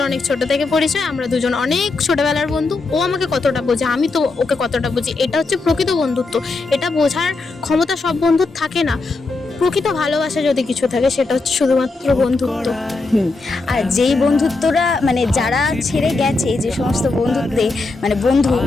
অনেক ছোট থেকে পরিচয়, আমরা দুজন অনেক ছোটবেলার বন্ধু। ও আমাকে কতটা বোঝে, আমি তো ওকে কতটা বুঝি, এটা হচ্ছে প্রকৃত বন্ধুত্ব। এটা বোঝার ক্ষমতা সব বন্ধুর থাকে না। প্রকৃত ভালোবাসা যদি কিছু থাকে সেটা হচ্ছে শুধুমাত্র বন্ধুত্ব। আর যেই বন্ধুত্বরা মানে যারা ছেড়ে গেছে, যে সমস্ত বন্ধুত্বে মানে বন্ধু,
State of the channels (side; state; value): right; quieter; 3.6 dB